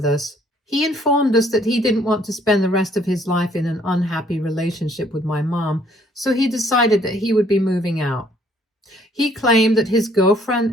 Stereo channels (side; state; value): both; normal; correlation 0.63